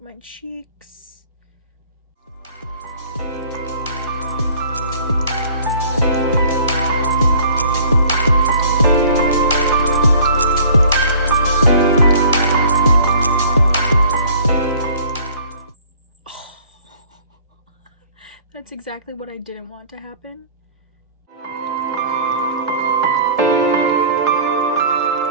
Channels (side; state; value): both; inverted; correlation -0.51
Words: cheeks. That's exactly what I didn't want to happen.